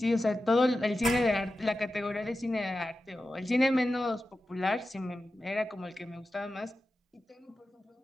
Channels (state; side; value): normal; both; correlation 0.93